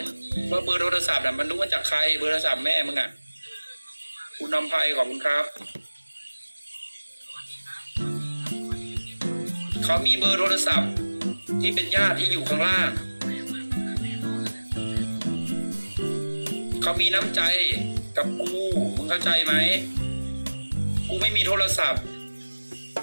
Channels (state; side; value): inverted; both; correlation -1.00